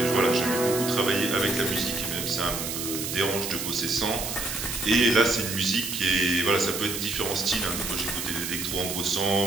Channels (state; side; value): noise; right; hiss, 4 dB below the sound